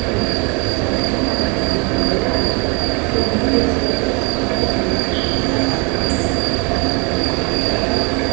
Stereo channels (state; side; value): quieter; left; 31.2 dB